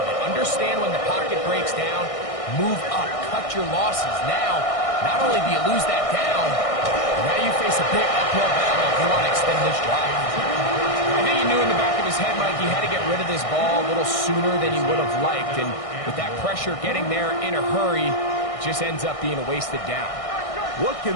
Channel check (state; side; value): late; right; 1.6 ms